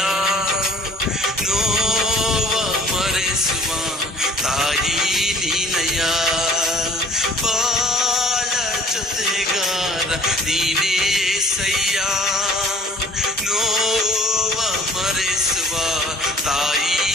ನೋವ ಮರೆಸುವ ತಾಯಿ ನೀನಯ್ಯ. ಬಾಳ ಜೊತೆಗಾರ ನೀನೇ ಸಯ್ಯ, ನೋವ ಮರೆಸುವ ತಾಯಿ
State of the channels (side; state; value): both; normal; correlation 0.51